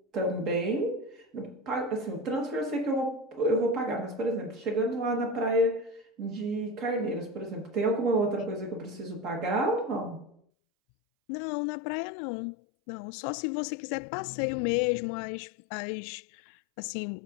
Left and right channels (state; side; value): drops out; right; at 10.4 s